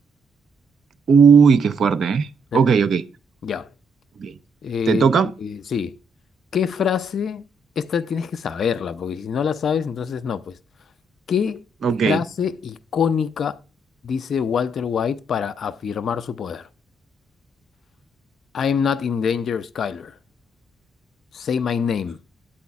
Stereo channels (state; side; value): normal; both; correlation 0.72